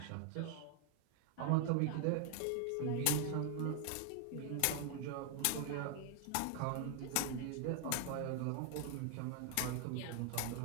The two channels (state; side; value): different; both; correlation 0.00